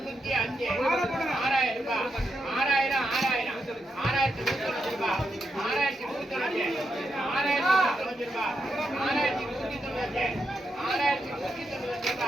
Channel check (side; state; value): both; normal; correlation 0.83